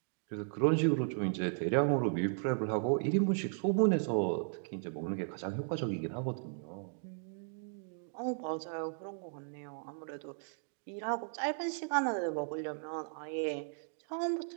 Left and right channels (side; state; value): left; silent; digital silence